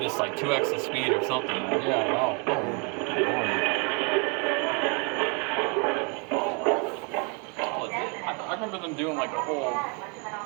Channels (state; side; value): quieter; left; 34.8 dB